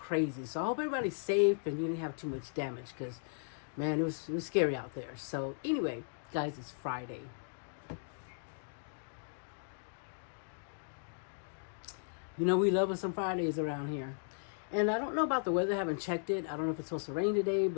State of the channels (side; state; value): right; silent; digital silence